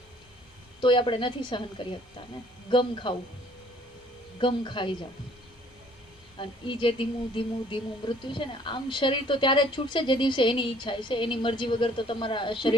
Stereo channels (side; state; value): both; normal; correlation 0.59